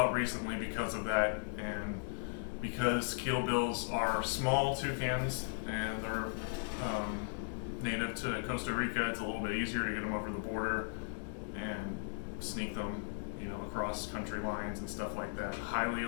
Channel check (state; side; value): silent; right; digital silence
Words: recently because of that. And because Kill Bills are small toucans and they're native to Costa Rica, it's a little bit easier to get them over the border and sneak them, across country lines and stuff like that. Highly